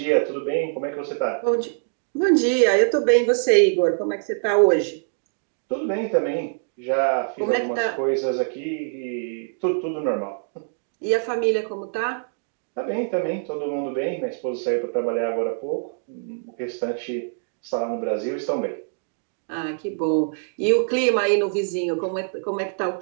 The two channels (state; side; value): silent; left; digital silence